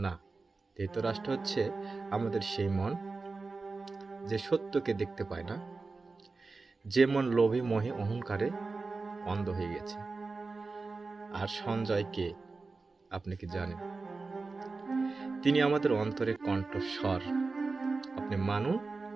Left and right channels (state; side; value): quieter; left; 3.9 dB